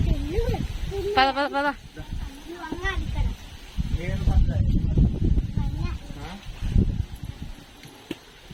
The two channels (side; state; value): both; identical; correlation 1.00